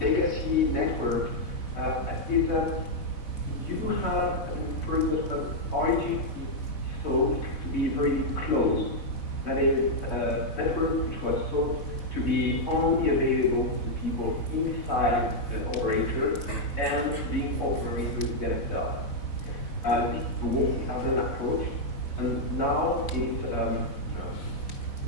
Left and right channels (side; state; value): right; late; 4.0 ms